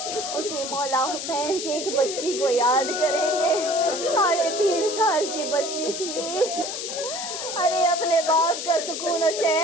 اسی مولا حسین کی ایک بچی کو یاد کریں گے. 3.5 سال کی بچی تھی. ارے اپنے باپ کا سکون و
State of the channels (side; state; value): left; noise; hiss, 5 dB below the sound